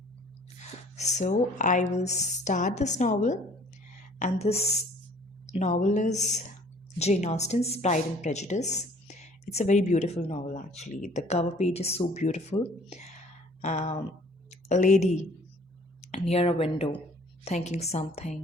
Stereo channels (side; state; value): both; normal; correlation 0.54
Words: So I will start this novel, and this novel is Jane Austen's Pride and Prejudice. It's a very beautiful novel, actually. The cover page is so beautiful. A lady near a window thinking